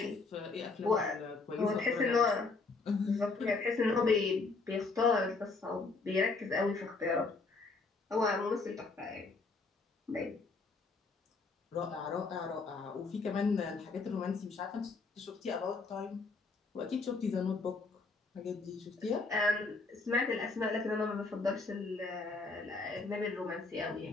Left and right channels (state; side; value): quieter; right; 4.0 dB